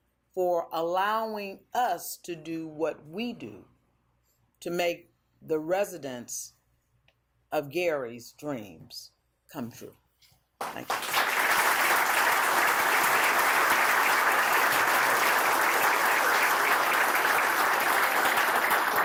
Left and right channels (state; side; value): identical; both; correlation 1.00